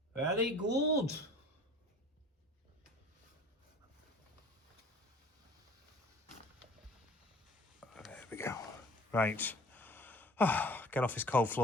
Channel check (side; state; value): both; normal; correlation 0.47